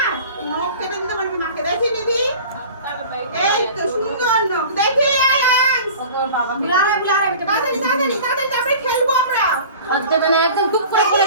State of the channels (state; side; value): inverted; both; correlation -0.41